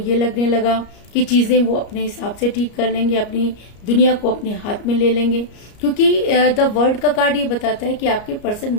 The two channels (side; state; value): right; late; 34 ms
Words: लगने लगा कि चीजें वो अपने हिसाब से ठीक कर लेंगे, अपनी दुनिया को अपने हाथ में ले लेंगे, क्योंकि द वर्ल्ड का कार्ड ये बताता है कि आपके पर्सन